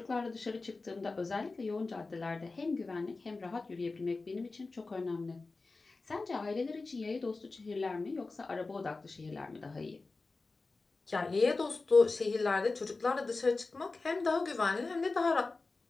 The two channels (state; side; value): quieter; right; 3.7 dB